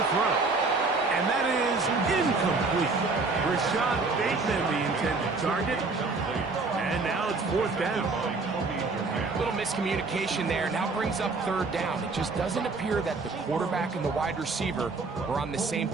throw. And that is incomplete. Rashad Bateman, the intended target. And now it's 4th down. A little miscommunication there. Now brings up 3rd down. It just doesn't appear that the quarterback and the wide receiver were on the same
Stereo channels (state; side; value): quieter; left; 3.9 dB